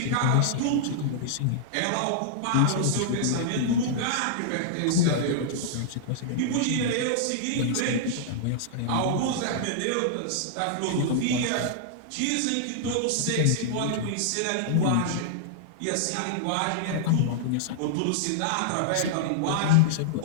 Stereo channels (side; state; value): both; different; correlation -0.01